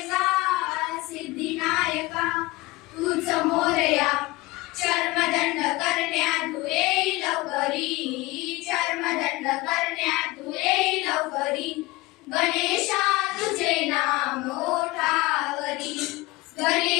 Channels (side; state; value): right; quieter; 20.8 dB